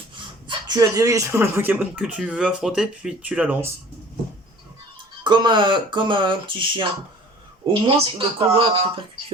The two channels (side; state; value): both; normal; correlation 0.47